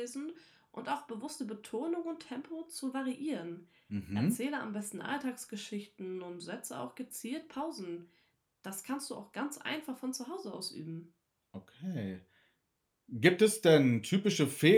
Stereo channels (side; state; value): both; identical; correlation 1.00